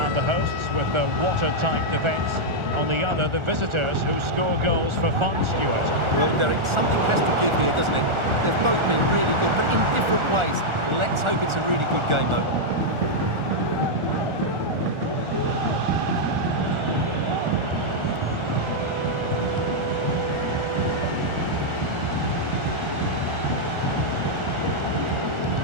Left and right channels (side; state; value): left; late; 1.4 ms